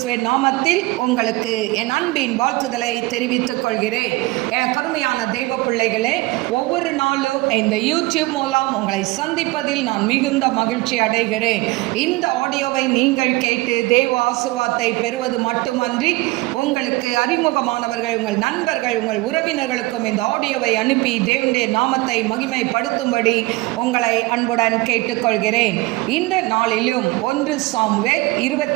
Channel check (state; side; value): quieter; left; 21.6 dB